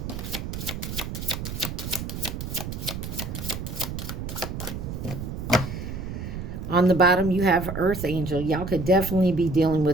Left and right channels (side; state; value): right; noise; rumble, 6 dB below the sound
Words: On the bottom, you have Earth Angel. Y'all could definitely be dealing